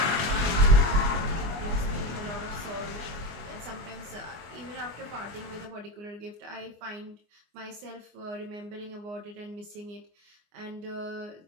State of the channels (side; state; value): left; late; 24 ms